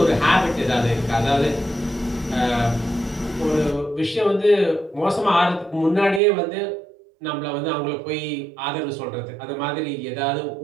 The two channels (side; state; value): left; drops out; at 6.2 s